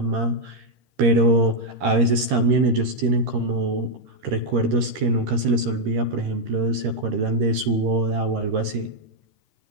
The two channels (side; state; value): left; late; 13 ms